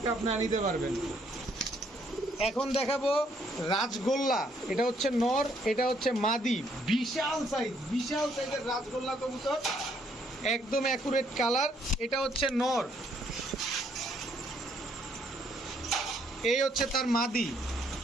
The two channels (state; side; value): normal; both; correlation 0.69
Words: আপনারা নিতে পারবেন। এখন দেখাবো রাজগোল্লা, এটা হচ্ছে নর, এটা হচ্ছে মাদি, বিশাল সাইজ, বিশাল সাইজের রাজগোল্লা কবুতর, একদম অ্যাকুরেট কালার। এটা হচ্ছে নর, এই হচ্ছে তার মাদি।